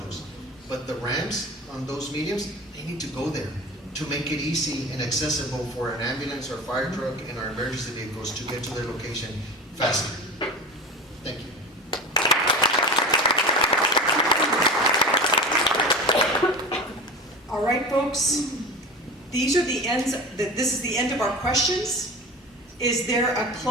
But the ramps on those mediums, they need to go there to make it easy and accessible for an ambulance or fire truck and our emergency vehicles to get to their location faster. Thank you. All right, folks. These are the ends. This is the end of our questions. Is there a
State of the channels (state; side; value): normal; both; correlation 0.31